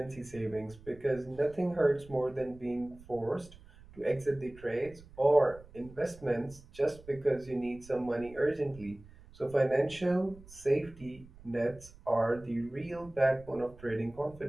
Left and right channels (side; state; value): right; noise; rumble, 21 dB below the sound